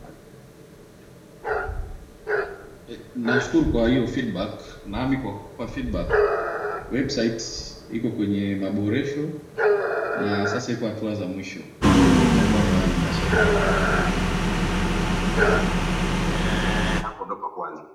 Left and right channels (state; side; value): identical; both; correlation 1.00